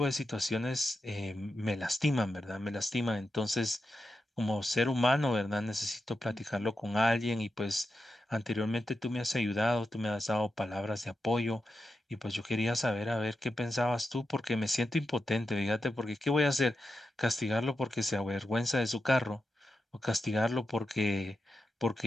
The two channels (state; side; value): normal; both; correlation 0.89